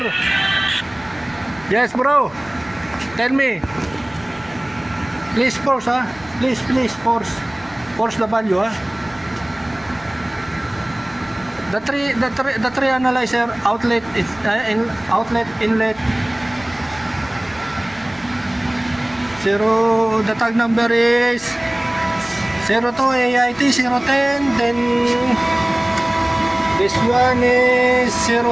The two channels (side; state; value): left; noise; rumble, 25 dB below the sound